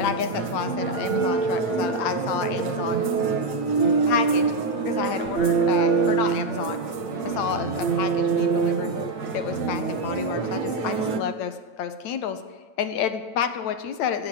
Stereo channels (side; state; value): right; late; 9.0 ms